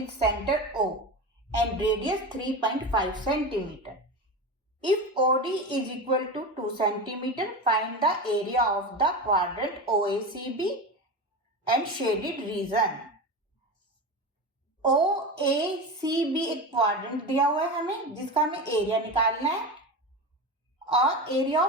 centre O and radius 3.5 centimetre. If OD is equal to 2 centimeter, find the area of the quadrant OACB and shaded region. OACB एक quadrant दिया हुआ है हमें, जिसका हमें एरिया निकालना है और एरिया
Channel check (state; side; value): normal; both; correlation 0.24